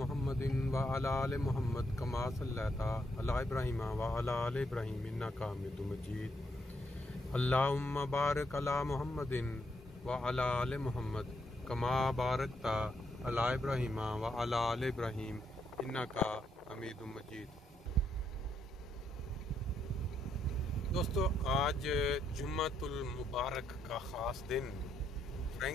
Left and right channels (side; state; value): both; normal; correlation 0.77